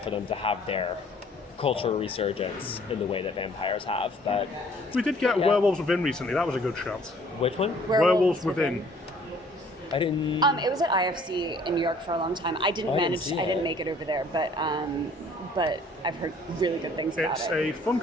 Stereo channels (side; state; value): both; normal; correlation 0.57